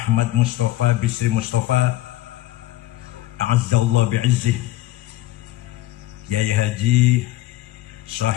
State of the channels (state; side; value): quieter; right; 15.8 dB